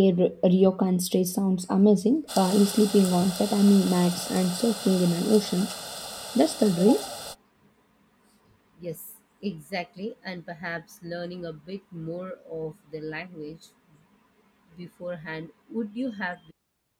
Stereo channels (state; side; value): identical; both; correlation 1.00